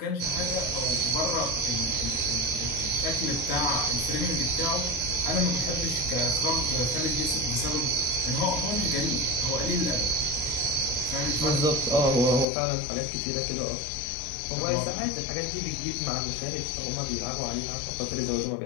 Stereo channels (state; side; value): drops out; right; at 12.5 s